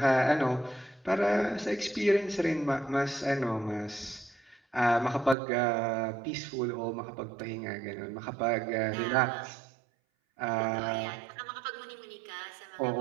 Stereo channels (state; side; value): drops out; left; at 5.4 s